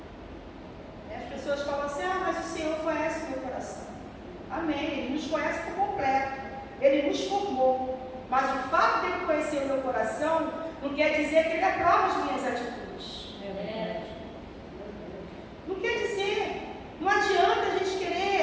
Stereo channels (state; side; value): identical; both; correlation 1.00